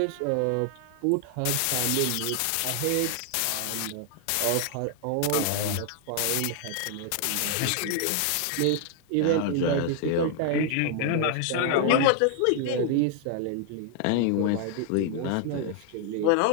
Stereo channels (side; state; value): both; different; correlation 0.00